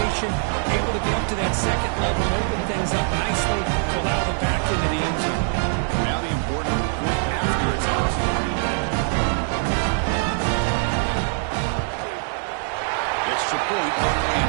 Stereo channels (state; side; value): silent; left; 55 dB below the other